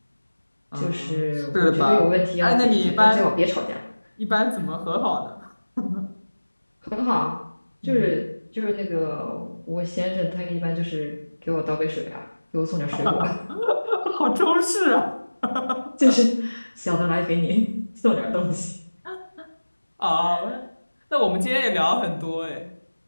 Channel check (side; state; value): both; inverted; correlation -1.00